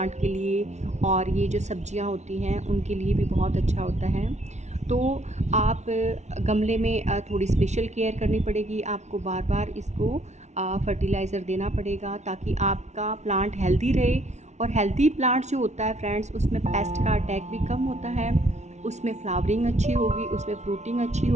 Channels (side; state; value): left; late; 0.32 ms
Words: के लिए, और ये जो सब्जियां होती हैं उनके लिए भी बहुत अच्छा होता है। तो आप गमले में थोड़ी स्पेशल केयर करनी पड़ेगी, आपको बार बार इसको फर्टिलाइज़र देना पड़ेगा ताकि आपका प्लांट हेल्दी रहे। और हेल्दी प्लांट जो होता है फ्रेंड्स, उसमें पेस्ट का अटैक भी कम होता है, उसमें फ्लावरिंग अच्छी होगी, उसमें फ्रूटिंग अच्छी